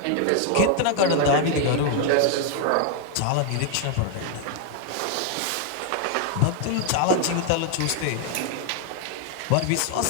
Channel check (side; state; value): both; different; correlation 0.00